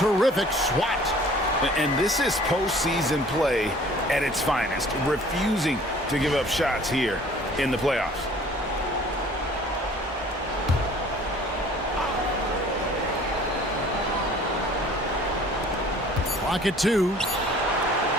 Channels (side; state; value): both; normal; correlation 0.51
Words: swat. And this is postseason play at its finest, refusing to give up shots here in the playoffs. Clock at 2.